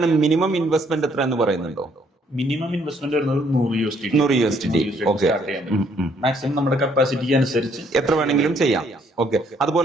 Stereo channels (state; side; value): normal; both; correlation 0.67